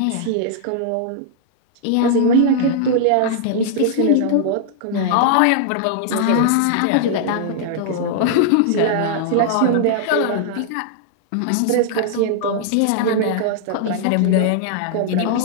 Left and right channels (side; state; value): both; different; correlation -0.01